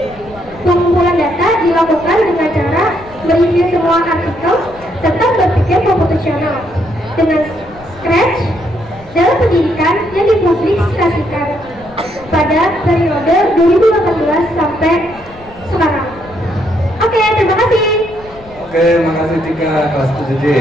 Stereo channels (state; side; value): noise; left; rumble, 21 dB below the sound